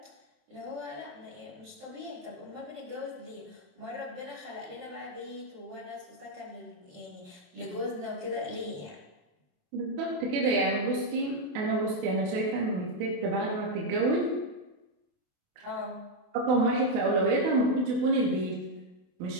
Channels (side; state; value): left; late; 28 ms